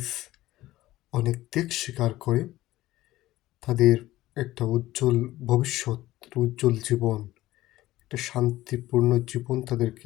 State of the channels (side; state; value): right; quieter; 16.3 dB